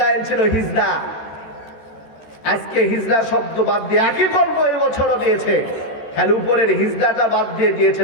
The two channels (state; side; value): late; right; 13 ms